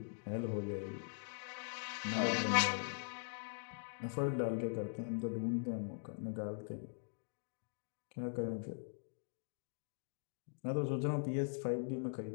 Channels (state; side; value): silent; right; digital silence